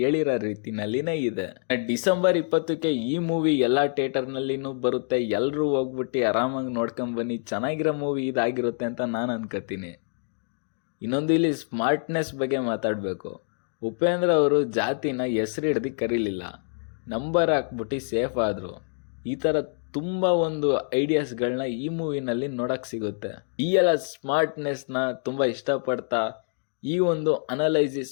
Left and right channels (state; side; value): silent; right; 58 dB below the other